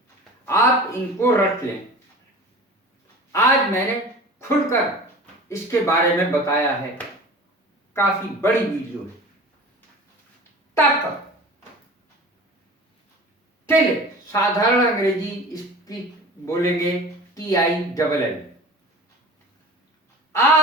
आप इनको रट लें। आज मैंने खुलकर इसके बारे में बताया है। काफी बड़ी वीडियो है। तक, टिल, साधारण अंग्रेजी इसकी बोलेंगे TILL।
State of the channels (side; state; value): both; normal; correlation 0.39